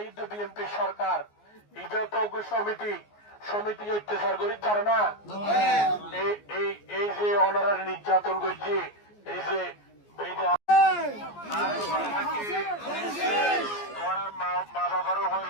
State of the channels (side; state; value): right; late; 14 ms